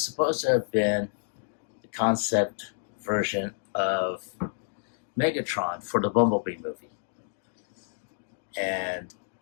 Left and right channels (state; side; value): silent; right; 59 dB below the other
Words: supposed to have been the concept version of Megatron for the Bumblebee movie. And